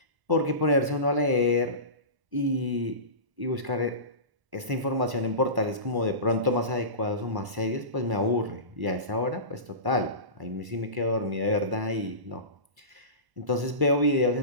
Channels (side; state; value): left; late; 1.1 ms